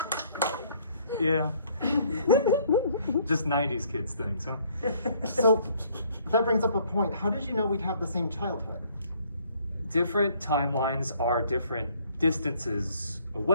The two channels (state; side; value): inverted; both; correlation -0.62